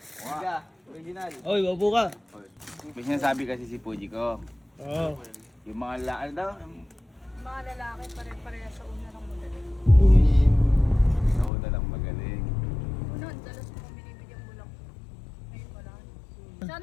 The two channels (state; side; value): drops out; right; at 11.5 s